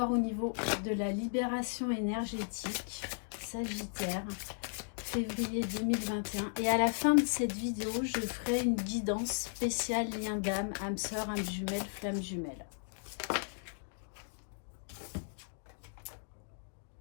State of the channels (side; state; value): right; silent; digital silence